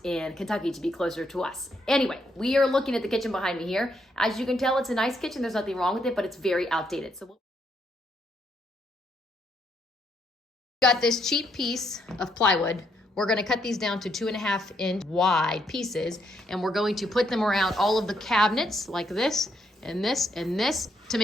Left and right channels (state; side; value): normal; both; correlation 0.75